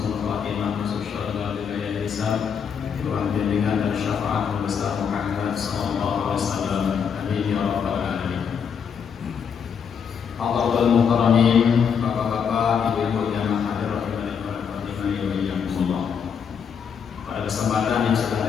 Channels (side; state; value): right; quieter; 7.1 dB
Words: khatimah masuk syurga bila yang hisab. Tuhan bimbingan dan syafaat besar Muhammad sallallahu alaihi wasallam. Amin ya rabbal alamin. Allahul mukarramin, bapak-bapak, ibu-ibu jamaah